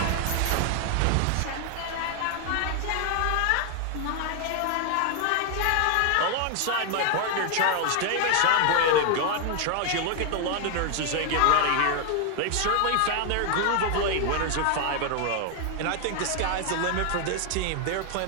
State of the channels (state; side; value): different; both; correlation 0.00